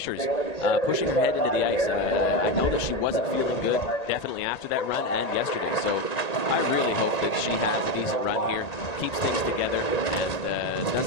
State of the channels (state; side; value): late; right; 1.9 ms